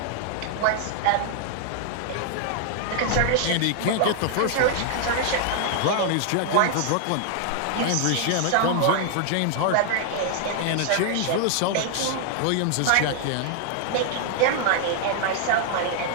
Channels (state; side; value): different; both; correlation 0.00